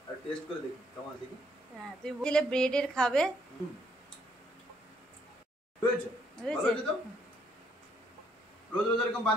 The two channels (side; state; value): both; normal; correlation 0.69